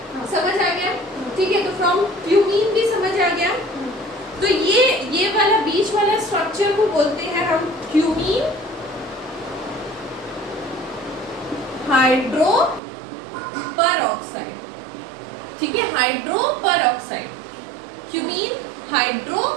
समझ आ गया, ठीक है। तो फ्रॉम क्यूमीन भी समझ आ गया। तो ये वाला बीच वाला स्ट्रक्चर को बोलते हैं हम क्यूमीन हाइड्रो परऑक्साइड, ठीक है, hydro peroxide, cumene hydro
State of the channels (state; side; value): drops out; left; at 12.8 s